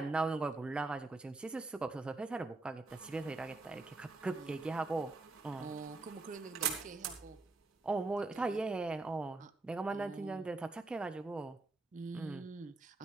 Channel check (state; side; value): quieter; left; 3.3 dB